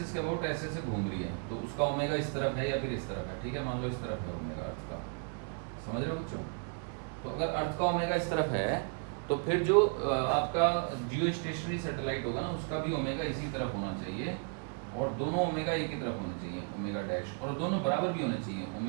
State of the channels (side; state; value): left; quieter; 39.4 dB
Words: के अबाउट ऐसे ऐसे घूम रही है, तो उसका ओमेगा इस तरफ है या फिर इस तरफ है, ठीक है। मान लो इस तरफ है ओमेगा अर्थ का, समझ रहे हो बच्चों। तो अगर अर्थ का ओमेगा इस तरफ है तो फिर जो आपका जियो स्टेशनरी सैटेलाइट होगा ना उसका भी ओमेगा इसी तरफ होना चाहिए, और दोनों ओमेगा एक ही तरफ होना चाहिए, ओमेगा डैश, और दोनों बराबर भी होने चाहिए,